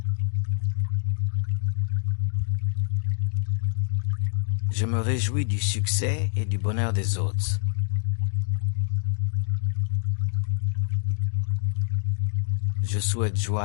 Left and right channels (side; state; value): right; silent; digital silence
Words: Je me réjouis du succès et du bonheur des autres. Je souhaite